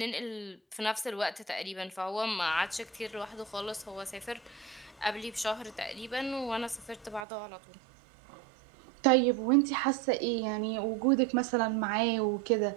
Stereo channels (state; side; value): drops out; left; at 7.2 s